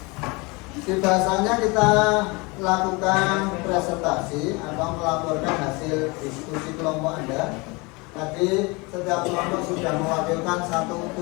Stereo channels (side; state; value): right; quieter; 26.7 dB